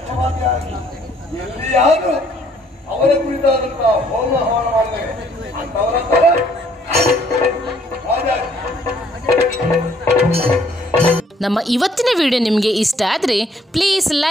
ಎಲ್ಲಿಯಾದರೂ ಅವರ ಕುರಿತಾದಂತಹ ಹೋಮ ಹವನ ಮಾಡಿದರೆ ಅಂತವರ ನಮ್ಮ ಇವತ್ತಿನ ವಿಡಿಯೋ ನಿಮಗೆ ಇಷ್ಟ ಆದರೆ ಪ್ಲೀಸ್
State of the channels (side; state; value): both; normal; correlation 0.64